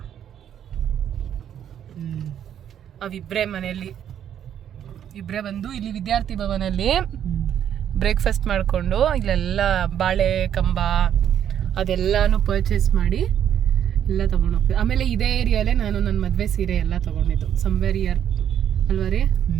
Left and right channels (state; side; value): quieter; left; 9.7 dB